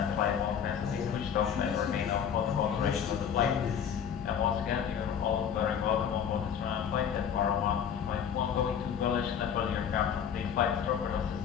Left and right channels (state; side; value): quieter; right; 8.1 dB